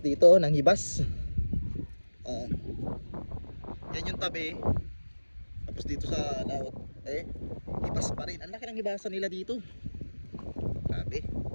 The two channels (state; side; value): inverted; both; correlation -1.00